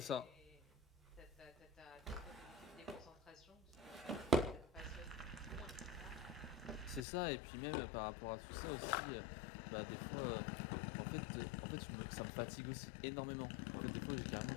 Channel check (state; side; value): drops out; right; at 7.1 s